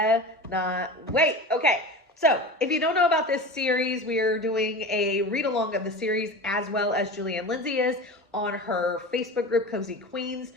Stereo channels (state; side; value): normal; both; correlation 0.31